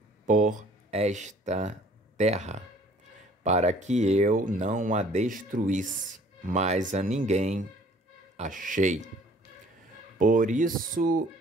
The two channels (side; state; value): both; normal; correlation 0.55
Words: por esta terra, para que eu não a destruísse, mas a ninguém achei. Por isso